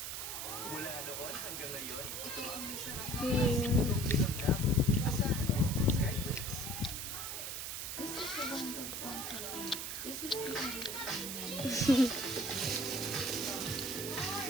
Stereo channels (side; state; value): right; noise; hiss, 5 dB below the sound